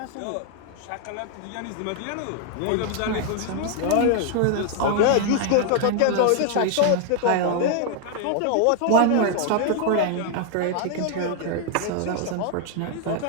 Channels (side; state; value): both; different; correlation 0.00